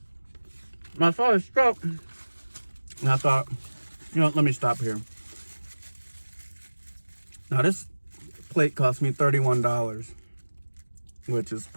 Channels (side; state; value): both; inverted; correlation -1.00